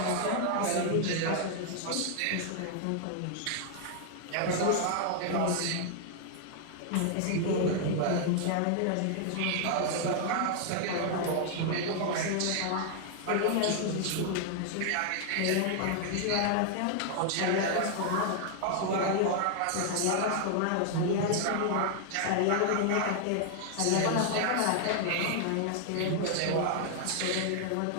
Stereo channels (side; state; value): both; different; correlation 0.00